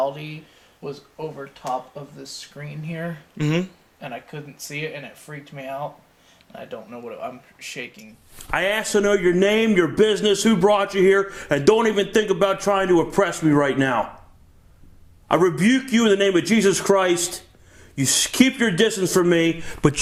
was over top of this screen here. Mm-hmm. And I couldn't see it, and it freaked me out. And I don't know I'm shaking. I asked to know your name, your business, who brought you here, and don't even think about trying to oppress me right now. I rebuke you in the name of Jesus Christ. You keep your distance from me, but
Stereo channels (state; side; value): identical; both; correlation 1.00